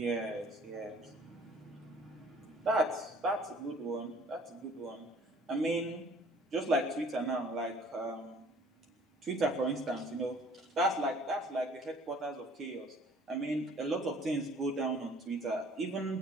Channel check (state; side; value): normal; both; correlation 0.54